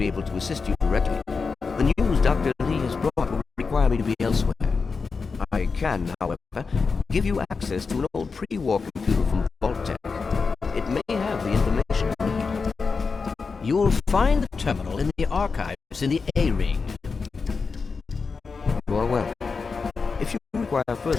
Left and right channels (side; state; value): right; quieter; 4.8 dB